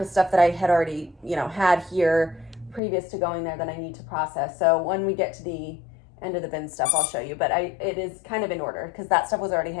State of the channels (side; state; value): right; drops out; at 2.8 s